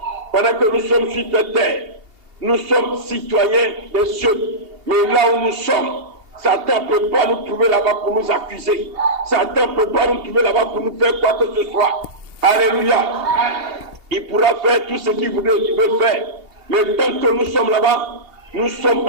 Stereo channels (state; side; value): late; left; 2.8 ms